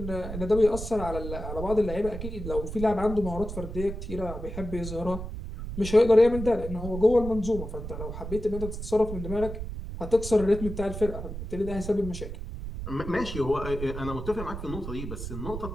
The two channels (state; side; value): noise; right; rumble, 7 dB below the sound